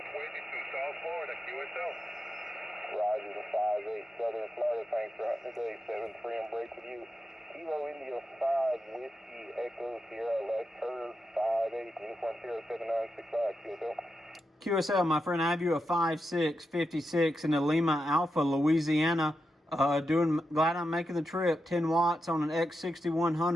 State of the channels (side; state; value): both; normal; correlation 0.87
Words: waiting to South Florida, QSL. Roger the 58, Southern Florida. Thanks for hunting today, 7-3. I'm break with you. Kilo India 5, Whiskey Echo Sierra. Last curve 58. Uniform Sierra 7965. QSL. QSL, my friend, I have you a 5-6-56 in the Lima Alpha, Louisiana. Glad I'm making the trip. 10 watts on an